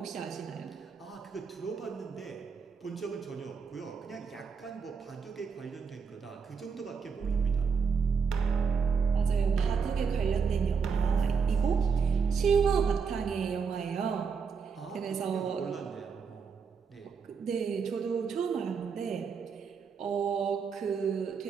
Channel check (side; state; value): left; quieter; 5.8 dB